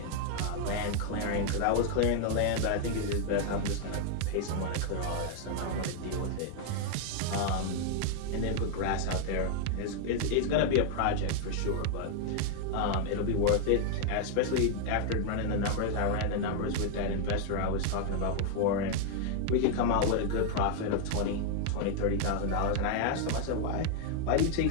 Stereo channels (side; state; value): both; different; correlation 0.00